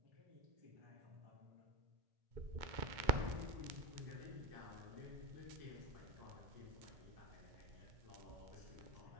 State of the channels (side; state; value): left; late; 2.1 ms